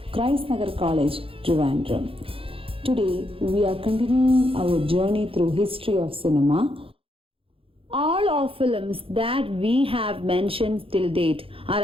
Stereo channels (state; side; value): late; left; 0.27 ms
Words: Christ Nagar College, Trivandrum. Today we are continuing our journey through history of cinema. All of films that we have mentioned till date are